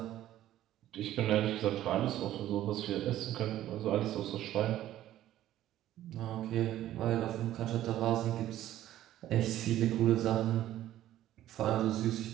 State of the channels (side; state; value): left; quieter; 13.3 dB